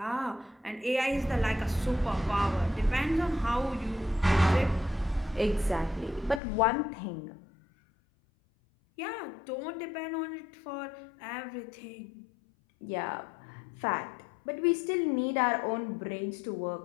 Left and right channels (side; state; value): right; drops out; at 6.4 s